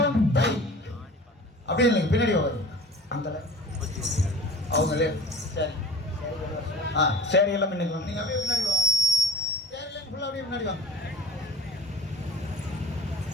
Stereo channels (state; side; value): normal; both; correlation 0.42